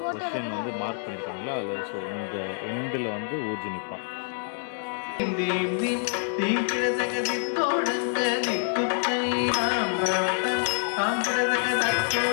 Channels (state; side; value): silent; right; digital silence